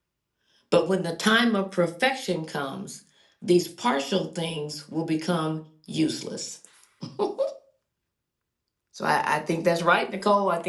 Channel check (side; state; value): both; identical; correlation 1.00